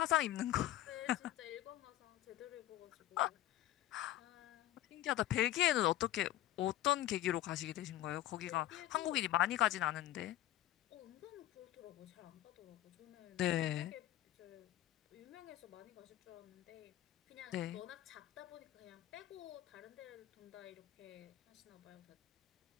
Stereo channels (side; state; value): right; quieter; 14.1 dB